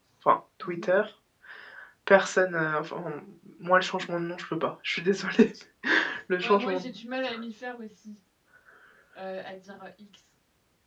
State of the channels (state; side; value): identical; both; correlation 1.00